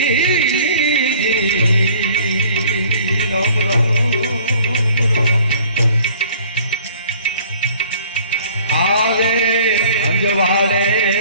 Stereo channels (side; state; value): both; inverted; correlation -0.53